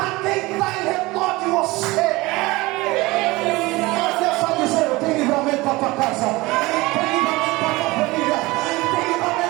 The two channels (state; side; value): quieter; left; 21.3 dB